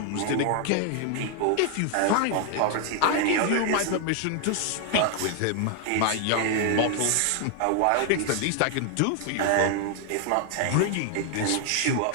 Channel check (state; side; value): different; both; correlation 0.00